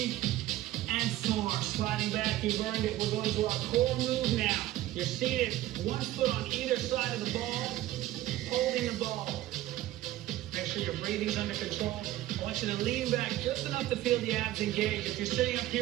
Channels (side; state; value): left; quieter; 15.1 dB